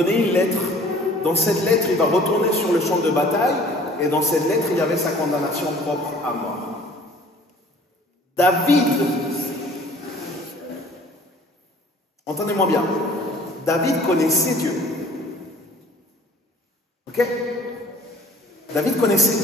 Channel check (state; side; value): normal; both; correlation 0.51